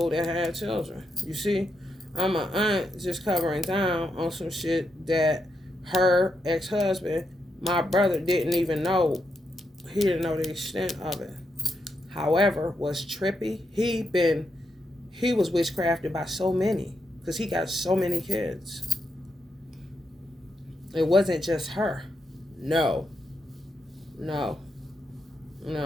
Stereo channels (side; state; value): both; normal; correlation 0.82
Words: that had children. You see, I'm an aunt just covering down on some shit that her ex-husband, my brother, didn't even know. He didn't know the extent of it. However, was trippy. He was witchcrafted by so many, because he got so many kids. It wasn't just her. No. No.